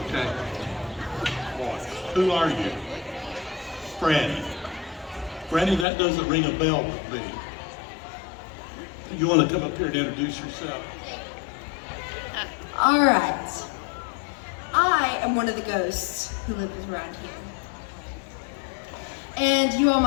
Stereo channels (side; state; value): right; drops out; at 5.9 s